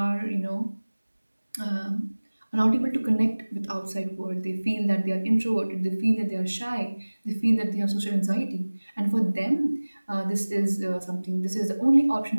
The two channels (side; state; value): both; inverted; correlation -1.00